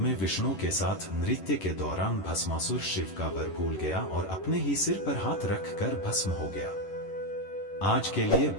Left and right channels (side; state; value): right; late; 11 ms